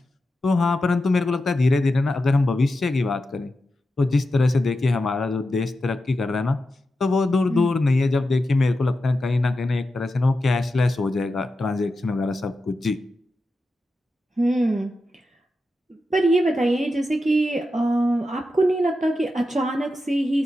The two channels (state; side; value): normal; both; correlation 0.90